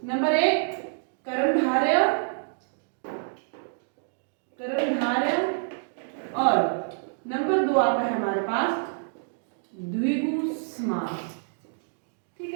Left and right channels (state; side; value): silent; left; digital silence